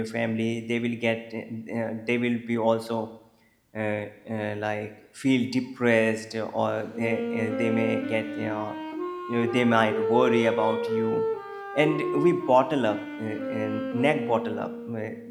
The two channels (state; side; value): identical; both; correlation 1.00